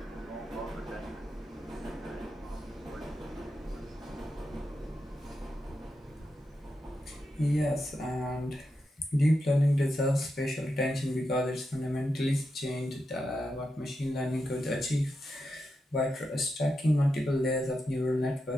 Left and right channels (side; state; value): both; normal; correlation 0.87